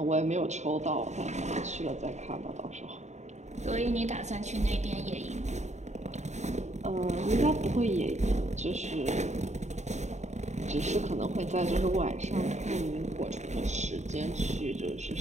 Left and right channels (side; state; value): left; late; 0.34 ms